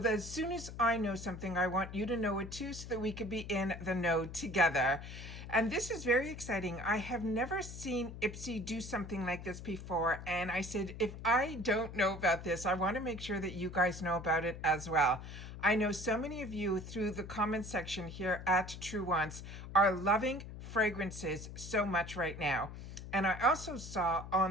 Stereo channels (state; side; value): noise; left; hum, 11 dB below the sound